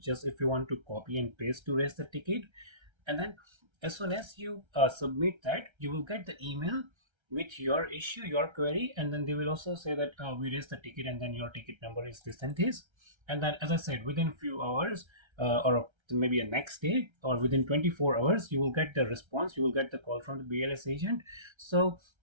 if you want to copy and paste to raise the ticket. And then as soon as you submit that, you will get the email with your issue, your query, and then they will also say that we raised the ticket and then your ticket number is this and this. And then, as I said, within few hours or maybe a next day or within 24 hours, you will get the response, you will get the call from the BLS agent. So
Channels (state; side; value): late; left; 1.3 ms